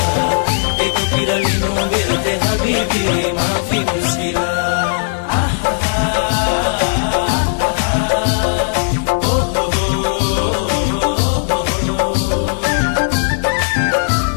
के कुतिर लिनु बेर्थे हबिबी माफी मुस्किला।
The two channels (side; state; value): right; silent; digital silence